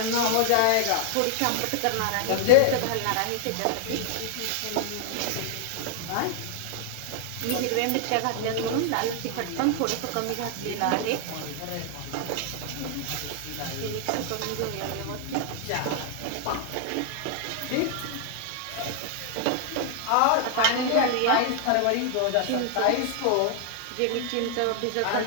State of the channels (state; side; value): different; both; correlation 0.00